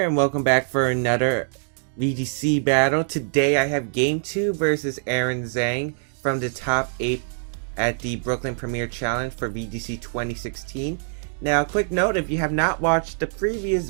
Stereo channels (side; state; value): left; silent; digital silence